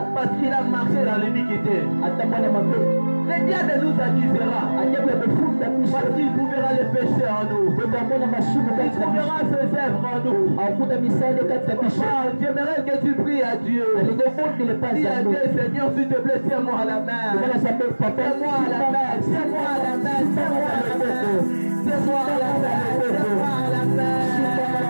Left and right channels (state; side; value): inverted; both; correlation -1.00